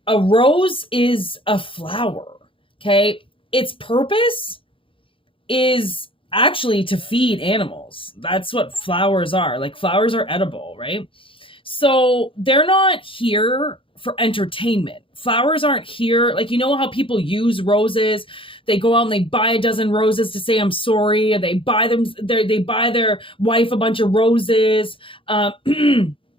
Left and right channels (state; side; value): late; right; 0.25 ms